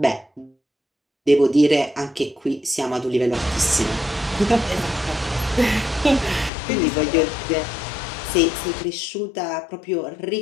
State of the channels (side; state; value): right; drops out; at 6.5 s